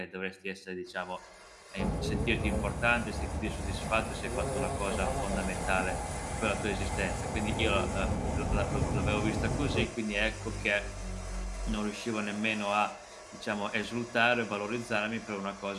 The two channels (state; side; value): identical; both; correlation 1.00